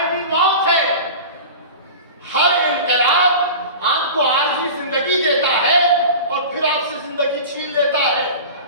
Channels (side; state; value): both; inverted; correlation -0.34